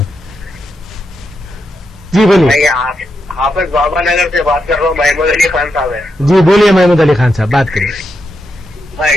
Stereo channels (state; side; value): normal; both; correlation 0.84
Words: जी बोलिए। मैं हाफिज बाबा नगर से बात कर रहा हूँ, महमूद अली खान साहब है। जी बोलिए महमूद अली खान साहब, बात करिए। मैं